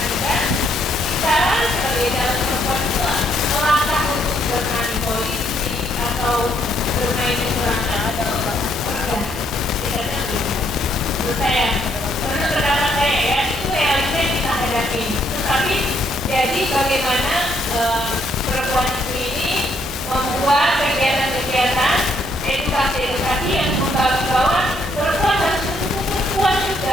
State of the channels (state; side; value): normal; both; correlation 0.71